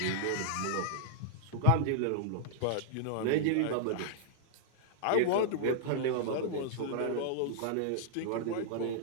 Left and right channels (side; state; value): both; different; correlation -0.01